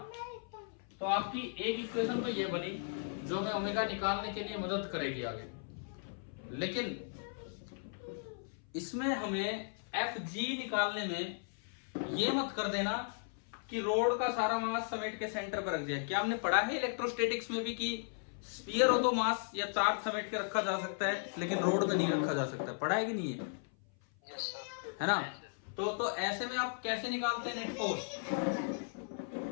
तो आपकी एक इक्वेशन तो ये बनी जो हमें ओमेगा निकालने के लिए मदद करेगी आगे, लेकिन इसमें हमें Fg निकालने में ये मत कर देना कि रोड का सारा मास समेट के सेंटर पर रख दिया। क्या हमने पढ़ा है इलेक्ट्रोस्टैटिक्स में भी कि स्फीयर हो तो मास या चार्ज समेट के रखा जा सकता है, लेकिन रोड में नहीं रखा जा सकता? पढ़ा है कि नहीं है? है ना? तो ऐसे में आप कैसे निकालते हैं नेट फोर्स?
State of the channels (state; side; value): silent; right; 54 dB below the other